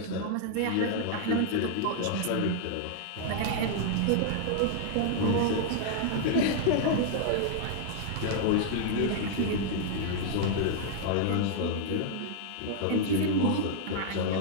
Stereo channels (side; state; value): both; different; correlation -0.01